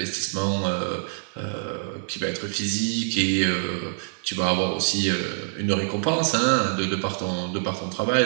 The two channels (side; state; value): left; silent; digital silence